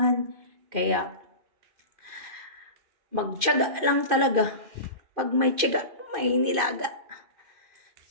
Kaya, magtiyaga lang talaga. Pag may tiyaga, may nilaga.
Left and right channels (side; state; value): left; late; 2.5 ms